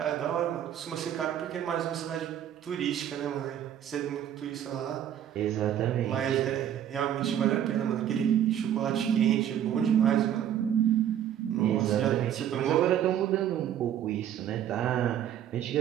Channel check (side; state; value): left; quieter; 10.4 dB